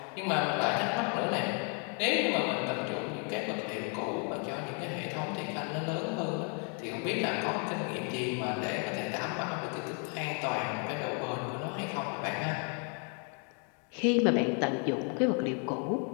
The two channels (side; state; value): right; quieter; 39.7 dB